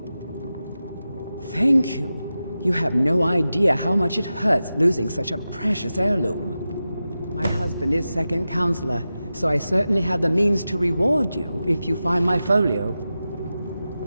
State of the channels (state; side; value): inverted; both; correlation -0.93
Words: Thank you. You have no idea how much it hurts losing such a precious heirloom. My husband is second counselor, so I certainly have the means to reward you if you find my folio.